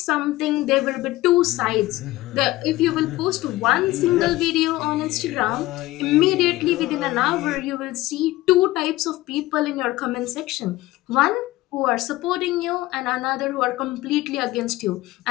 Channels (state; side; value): quieter; right; 17.8 dB